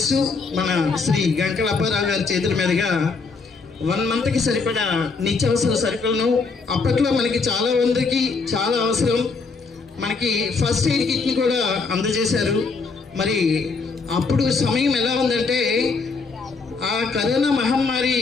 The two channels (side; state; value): right; quieter; 4.4 dB